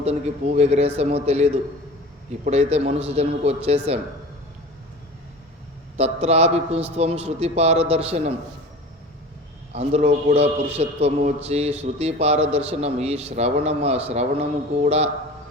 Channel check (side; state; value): both; normal; correlation 0.37